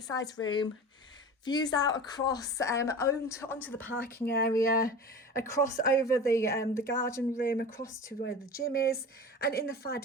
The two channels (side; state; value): both; normal; correlation 0.34